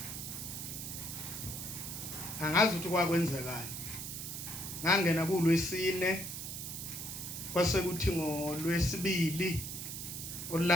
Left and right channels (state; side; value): noise; right; hiss, 7 dB below the sound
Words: Angazi ukuthi kwakwenzekani. Ngangena kuLwesine kwase kuthi ngoLwesibili